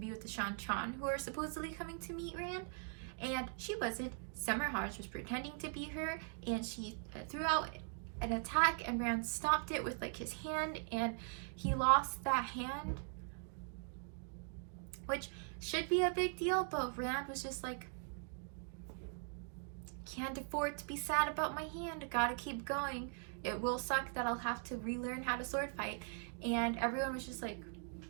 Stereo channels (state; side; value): silent; left; 50 dB below the other